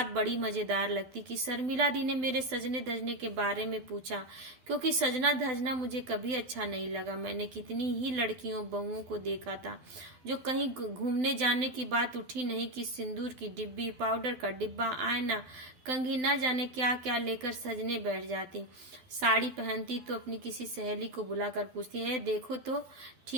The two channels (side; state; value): left; late; 12 ms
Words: बड़ी मजेदार लगती कि शर्मिला दी ने मेरे सजने धजने के बारे में पूछा, क्योंकि सजना धजना मुझे कभी अच्छा नहीं लगा। मैंने कितनी ही लड़कियों बहुओं को देखा था जो कहीं घूमने जाने की बात उठी नहीं कि सिंदूर की डिब्बी, पाउडर का डिब्बा, आईना, कंघी, न जाने क्या क्या लेकर सजने बैठ जाती। साड़ी पहनती तो अपनी किसी सहेली को बुलाकर पूछती है, देखो तो